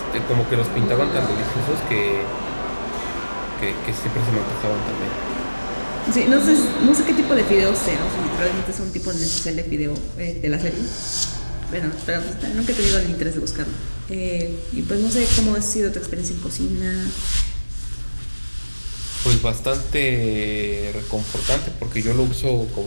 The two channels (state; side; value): inverted; both; correlation -1.00